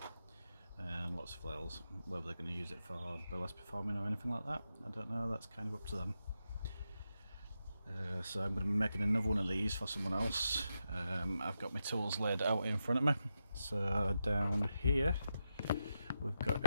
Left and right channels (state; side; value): inverted; both; correlation -0.86